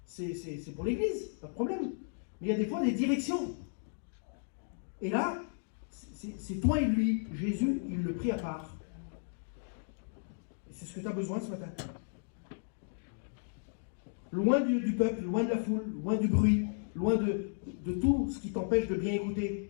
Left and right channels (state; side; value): silent; right; digital silence